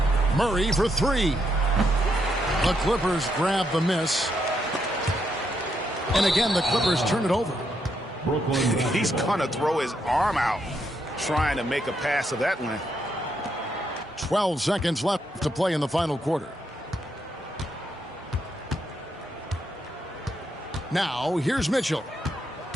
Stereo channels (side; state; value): both; normal; correlation 0.78